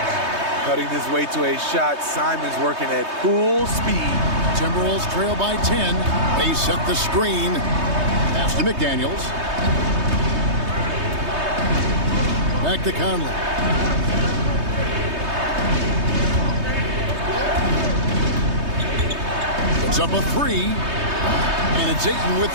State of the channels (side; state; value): left; late; 3.2 ms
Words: Cutting his way to a shot. Simon's working at full speed. Timberwolves trail by 10. They set the screen. Pass to McDaniels. Back to Conley. It's up a three. And it's Ayton with